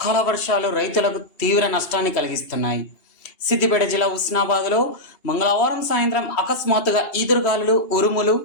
వర్షాలు రైతులకు తీవ్ర నష్టాన్ని కలిగిస్తున్నాయి. సిద్దిపేట జిల్లా హుస్నాబాద్లో మంగళవారం సాయంత్రం అకస్మాత్తుగా ఈదురుగాలులు, ఉరుములు,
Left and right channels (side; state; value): right; late; 2.8 ms